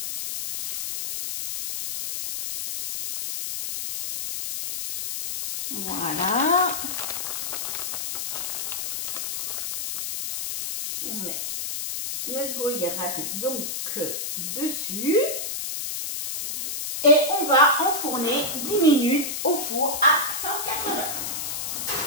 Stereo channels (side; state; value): left; noise; hiss, 3 dB below the sound